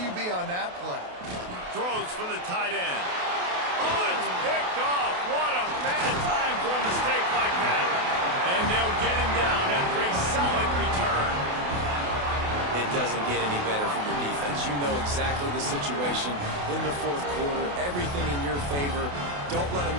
on that play? Throws for the tight end. Oh, it's picked off. What a bad time for a mistake like that. And they'll get him down after a solid return. It doesn't get any better for your defense. You know exactly the situation in the fourth quarter. Everything in your favor. Don't let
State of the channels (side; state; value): left; late; 28 ms